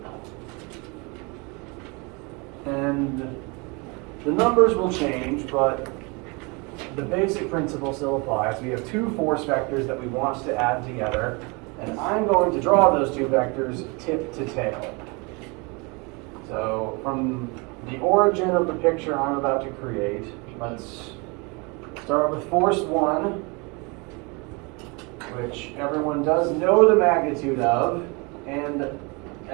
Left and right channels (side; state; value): left; quieter; 29.3 dB